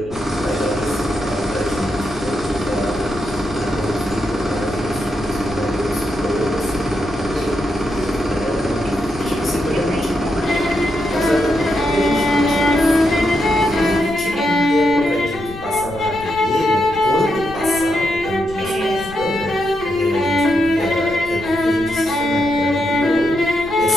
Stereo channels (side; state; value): left; noise; rumble, 15 dB below the sound